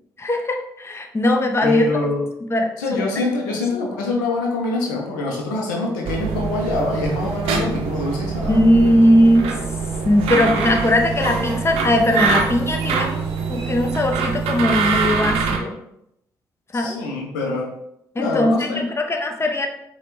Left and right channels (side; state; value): both; normal; correlation 0.69